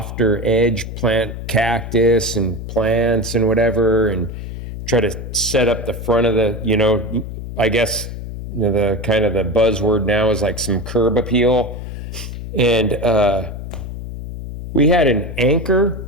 edge, plant cactus and plants and whatever, and try to set up the front of the, you know, I guess, you know, the kind of the buzzword now is like some curb appeal. And we had an anchor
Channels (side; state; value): left; noise; hum, 8 dB below the sound